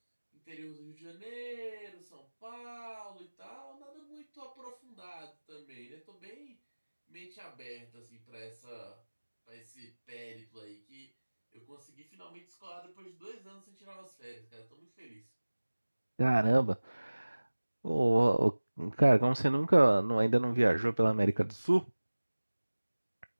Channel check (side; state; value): both; inverted; correlation -1.00